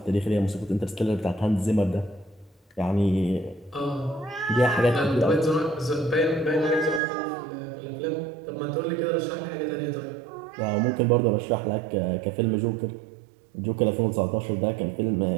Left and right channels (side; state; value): left; drops out; at 7.0 s